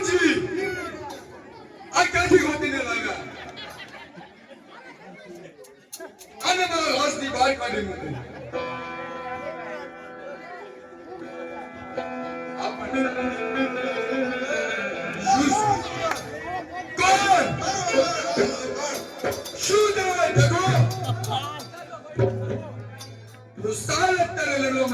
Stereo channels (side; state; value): both; identical; correlation 1.00